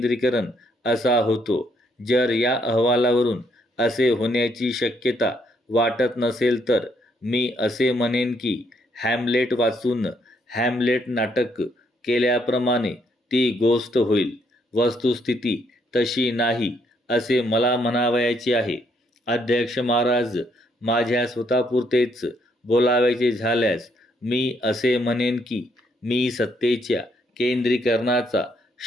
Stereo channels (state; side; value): normal; both; correlation 0.72